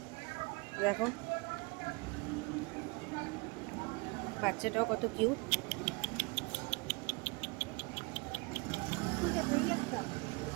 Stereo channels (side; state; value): left; quieter; 28.4 dB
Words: দেখো বাচ্চাটাও কত কিউট।